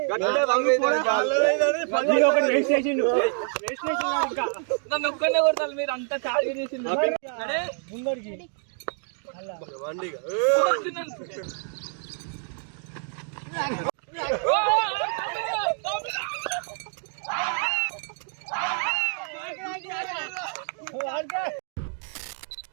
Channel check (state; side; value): silent; left; 59 dB below the other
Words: నన్ను ఒక్కనే కొడతారు మీరు అంతా చాలు చేసింది ముందడికి